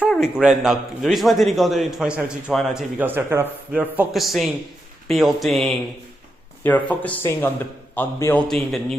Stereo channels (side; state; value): both; normal; correlation 0.85